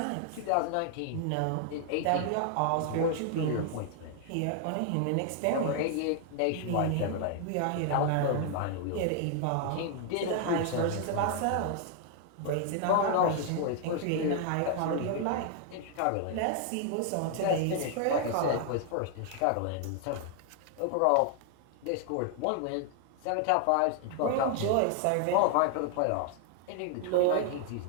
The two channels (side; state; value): both; different; correlation 0.00